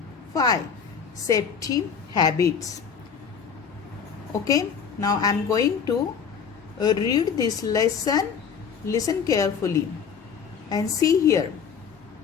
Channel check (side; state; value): right; quieter; 6.7 dB